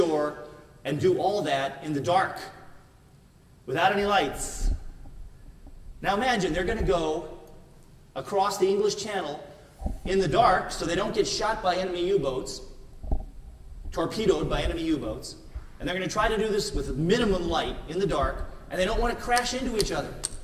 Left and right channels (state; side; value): identical; both; correlation 1.00